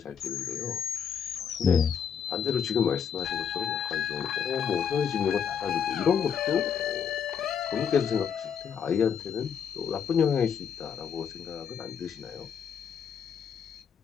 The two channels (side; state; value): right; quieter; 7.5 dB